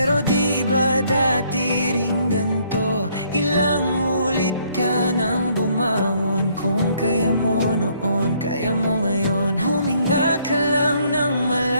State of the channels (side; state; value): both; inverted; correlation -0.67